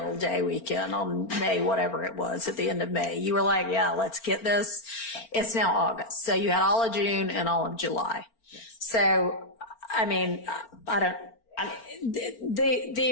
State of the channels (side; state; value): right; late; 4.4 ms